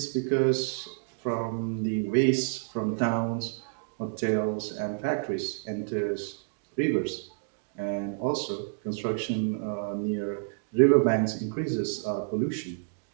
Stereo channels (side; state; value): left; silent; digital silence